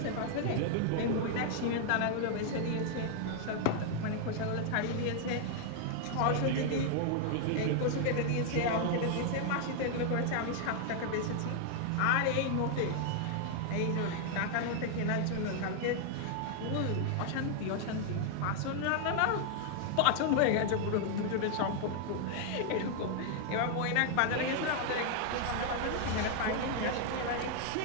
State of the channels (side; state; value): both; different; correlation 0.00